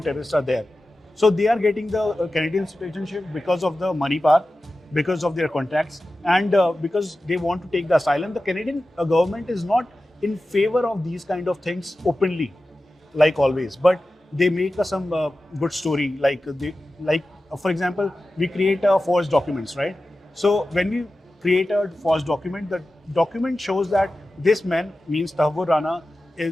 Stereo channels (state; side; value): normal; both; correlation 0.94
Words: terrorists are there. So they are getting the Canadian citizenship because of the money part, because of their contacts, and because they want to take the asylum. The Canadian government is not in favor of these kind of things openly, like always, but they make some good story. For example, we create forged documents, right? So when we create a forged document, the document shows that this man, means Tahawwur Rana,